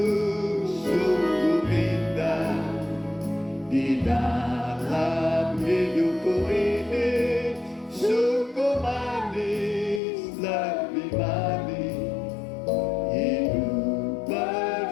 sungguh indah di dalam hidupku ini, sungguh manis, lebih manis hidup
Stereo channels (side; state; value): right; drops out; at 10.0 s